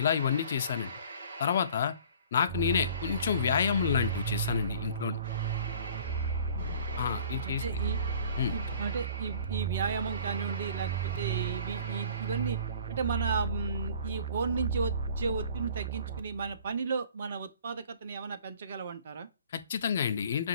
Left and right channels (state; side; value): inverted; both; correlation -0.49